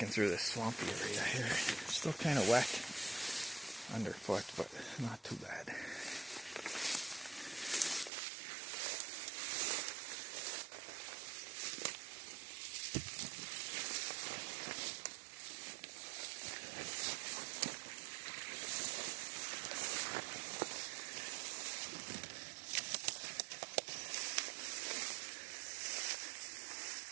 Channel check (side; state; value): left; drops out; at 8.1 s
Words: through this swampy area here. Still kind of wet underfoot, but not too bad.